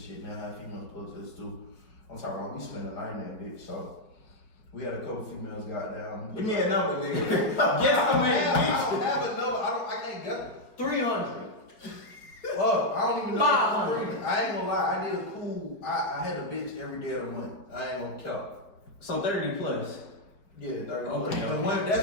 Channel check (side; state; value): right; late; 4.7 ms